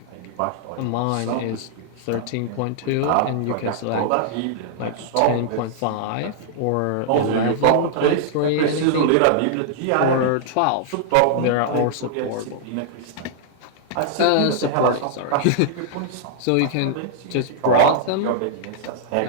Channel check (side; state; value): both; different; correlation -0.01